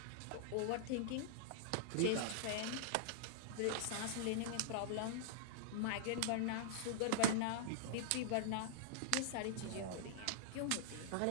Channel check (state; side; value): different; both; correlation -0.01